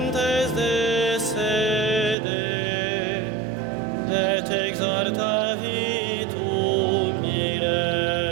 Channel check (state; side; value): drops out; left; at 2.1 s